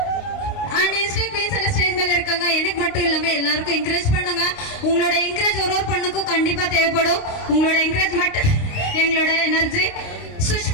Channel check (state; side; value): late; right; 29 ms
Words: அண்ட் இன்ஸ்டேக் குயின்ஸ் எல்லாம் ஸ்டேஜ் மேல இருக்காங்க. எனக்கு மட்டும் இல்லாம எல்லாருக்கும் என்கரேஜ் பண்ணுங்க. உங்களோட என்கரேஜ் ஒரு பண்ணுக்கும் கண்டிப்பா தேவைப்படும். உங்களோட என்கரேஜ்மெண்ட் எங்களோட எனர்ஜி.